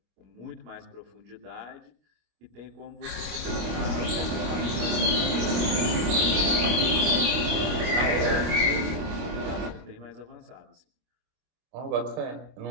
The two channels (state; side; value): late; left; 25 ms